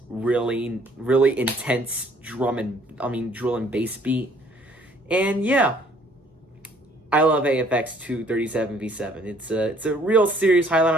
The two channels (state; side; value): normal; both; correlation 0.60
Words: really, really intense drill and bass beat. And yeah, I love AFX 237v7. It's a real serious highlight